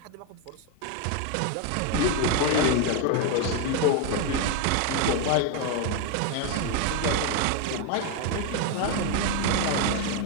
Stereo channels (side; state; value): both; different; correlation 0.01